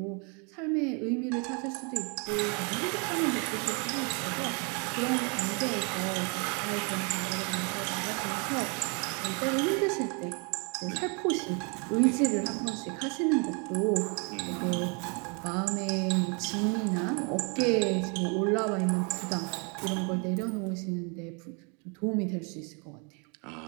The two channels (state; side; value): quieter; left; 34.8 dB